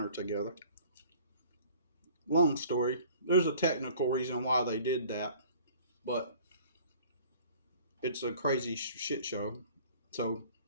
together. Long story. There's a technical reason why they did that, but it's a crazy shit show. So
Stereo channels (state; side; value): inverted; both; correlation -0.50